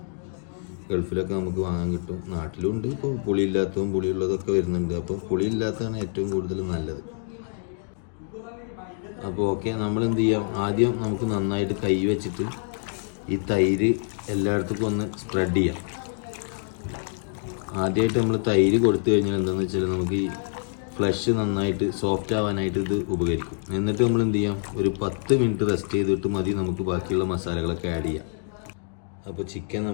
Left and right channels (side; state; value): right; silent; 61 dB below the other